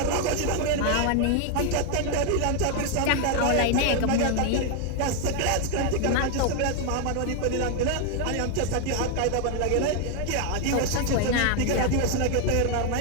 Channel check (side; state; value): both; different; correlation 0.01